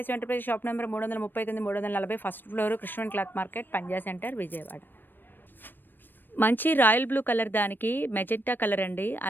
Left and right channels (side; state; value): right; late; 0.094 ms